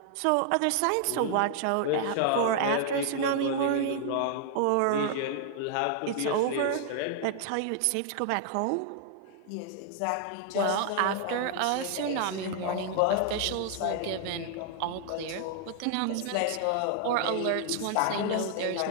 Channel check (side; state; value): both; different; correlation 0.00